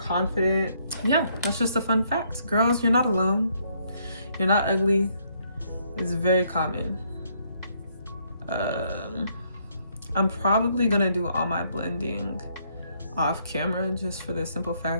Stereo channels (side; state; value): both; inverted; correlation -0.71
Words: Yeah, that's just a fun fact. Girls, you're not alone. You're not ugly. It's very common. I'm probably gonna do all my blending off camera just for the simple